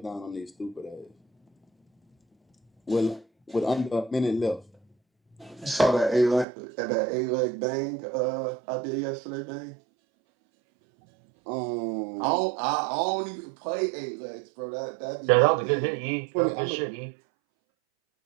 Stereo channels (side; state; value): left; drops out; at 6.5 s